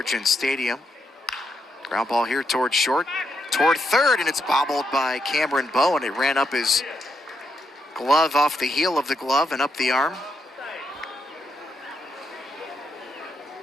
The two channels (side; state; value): both; normal; correlation 0.80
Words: Stadium. Ground ball here toward short, toward third, and it's bobbled by Cameron Bowen. It ran up his glove, off the heel of the glove and up the arm.